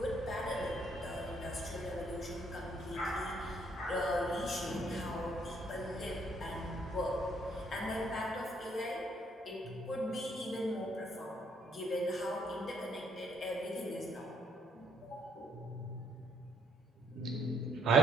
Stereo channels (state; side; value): normal; both; correlation 0.69